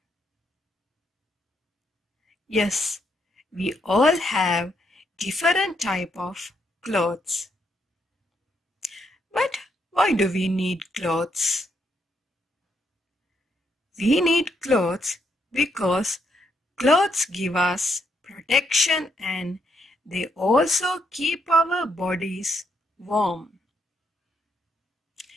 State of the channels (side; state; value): both; normal; correlation 0.76